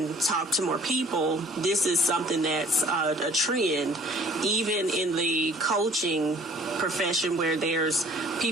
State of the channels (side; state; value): both; normal; correlation 0.53